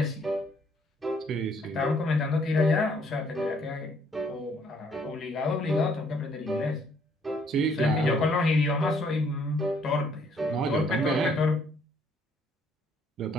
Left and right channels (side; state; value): both; normal; correlation 0.66